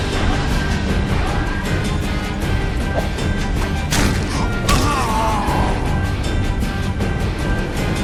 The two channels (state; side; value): identical; both; correlation 1.00